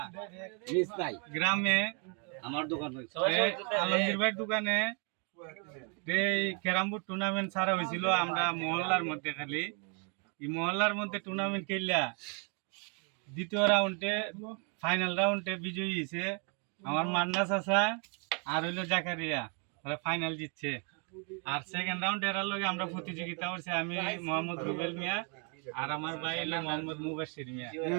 গ্রামে আমার দোকান হইছে আলমগীর ভাইয়ের দোকানে এই ক্যারাম বোর্ড টুর্নামেন্ট ছাড়া হয়েছিল। আমরা মহল্লার মধ্যে খালি এই মহল্লার মধ্যে টুর্নামেন্ট খেললা দ্বিতীয় রাউন্ডে ফাইনাল রাউন্ডে বিজয়ী হয়েছে আমার মান্না চাচা আর হইলো জাকারিয়া, ওরা ফাইনাল জিতছে। আর সেকেন্ড রাউন্ড এরার লগে আমরা প্রতিযোগিতা করছি, আমি মোহাম্মদ রুবেল মিয়া আর আমার ভাই হলো মোহাম্মদ মুবাশির মিয়া।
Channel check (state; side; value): quieter; left; 37.3 dB